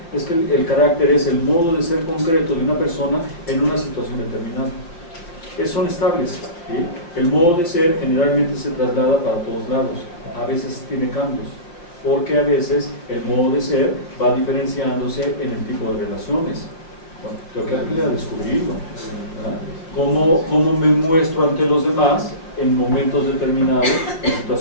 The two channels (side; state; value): right; late; 5.8 ms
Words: es que el carácter es el modo de ser concreto de una persona en una situación determinada. Son estables. ¿Sí? El modo de ser generalmente se traslada para todos lados, a veces tiene cambios, porque a veces el modo de ser va diferenciándose en el tipo de relaciones. Bueno, tengo que aprender a descubrirlo. ¿Cómo me muestro ante los demás en momentos determinados, en